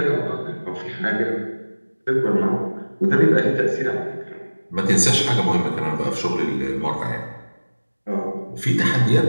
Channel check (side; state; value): both; inverted; correlation -1.00